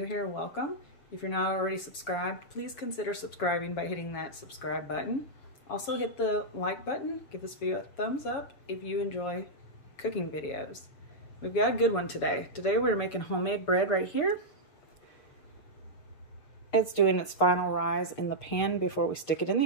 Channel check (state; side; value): late; right; 7.2 ms